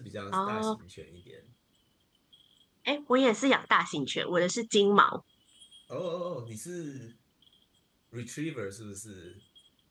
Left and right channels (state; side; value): identical; both; correlation 1.00